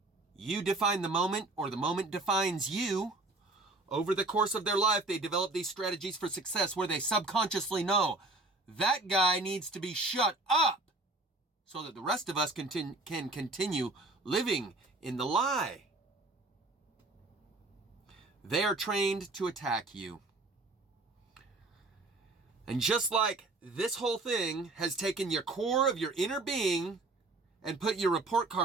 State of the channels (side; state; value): left; quieter; 3.0 dB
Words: you define the moment or the moment defines you, over the course of their life, they develop these strategies for success where they subconsciously know that guy needs to be shut up so that the rest of us can continue living in the lie. They are trained to attack you. And just like this whole thing has taken your core of your inner being and put your report